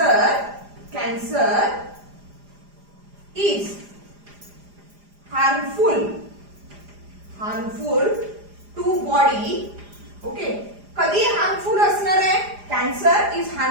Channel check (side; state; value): left; late; 4.9 ms